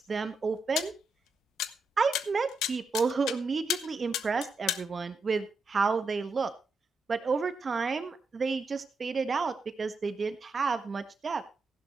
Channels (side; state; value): left; quieter; 3.1 dB